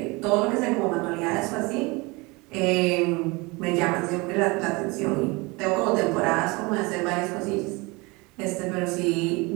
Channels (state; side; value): quieter; left; 25.7 dB